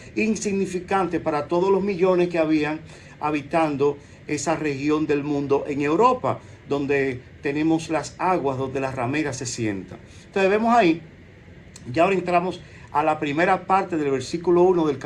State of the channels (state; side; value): identical; both; correlation 1.00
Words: insignificante para todos los millones que habían habitando esa región del mundo en Europa, donde tenemos las aguas, donde las rameras se sientan. Entonces vemos ahí, ya ahora entramos a la primera parte del versículo 1 del